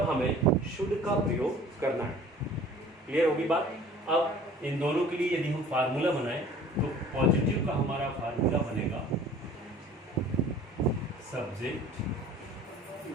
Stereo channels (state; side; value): normal; both; correlation 0.48